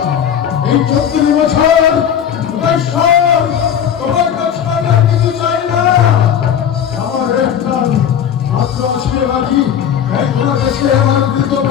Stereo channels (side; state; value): right; quieter; 8.8 dB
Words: এই 34 বছর ঈশ্বর তোমার কাছে আমি আর কিছু চাই না। আমার একটা মাত্র আশীর্বাদী এই তোমার কাছে আমার কৃত